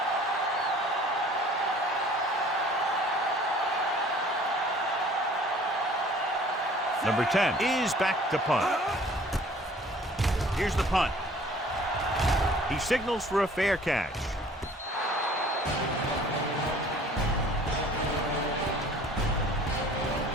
Number 10 is back to punt. Here's the punt. He signals for a fair catch.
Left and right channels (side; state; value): both; normal; correlation 0.52